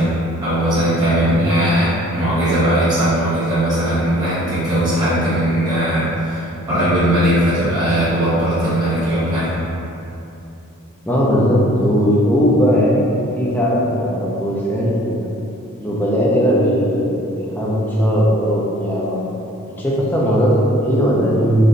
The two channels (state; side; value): normal; both; correlation 0.55